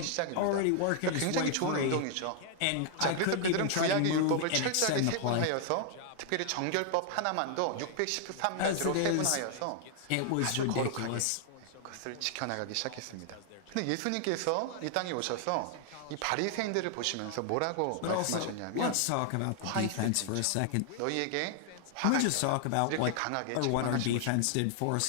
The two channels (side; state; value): both; different; correlation 0.00